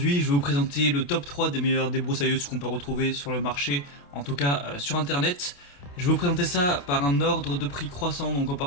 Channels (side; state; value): right; late; 28 ms